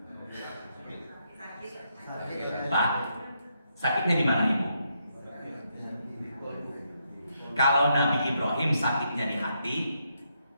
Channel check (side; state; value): both; inverted; correlation -0.79